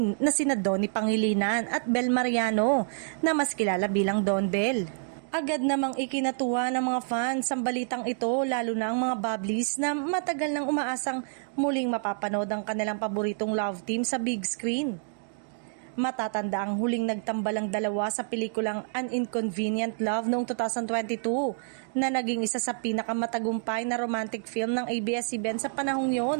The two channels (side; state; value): left; silent; digital silence